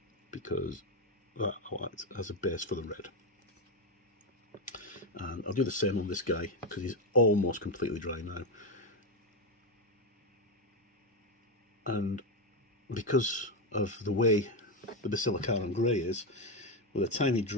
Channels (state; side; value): normal; both; correlation 0.09